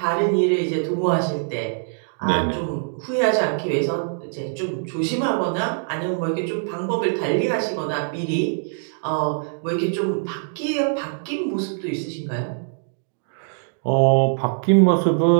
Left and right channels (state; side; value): silent; left; digital silence